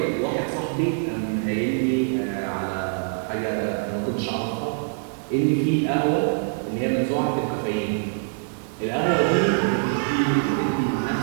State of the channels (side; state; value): left; silent; digital silence